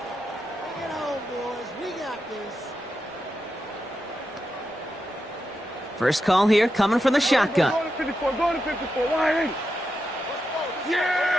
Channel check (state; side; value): normal; both; correlation 0.87